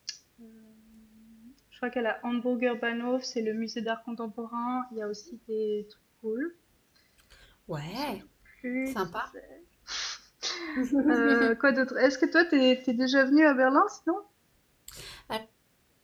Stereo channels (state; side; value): identical; both; correlation 1.00